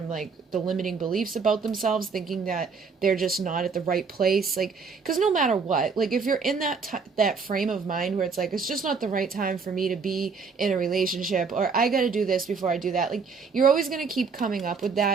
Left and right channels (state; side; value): quieter; left; 5.1 dB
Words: like the limiting beliefs about themselves, thinking that they're just not at the right place. Like, because no matter what, like if you're in that frame of mind where it's like, it's just not the right time for me to be in a relationship, or I got to do this before I do that. Like, you're always going to keep coming up with